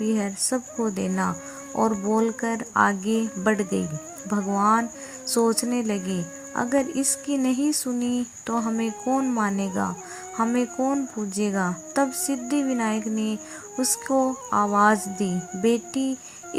सबको देना। और बोलकर आगे बढ़ गई। भगवान सोचने लगे, अगर इसकी नहीं सुनी तो हमें कौन मानेगा, हमें कौन पूजेगा? तब सिद्धि विनायक ने उसको आवाज़ दी, बेटी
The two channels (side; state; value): both; identical; correlation 1.00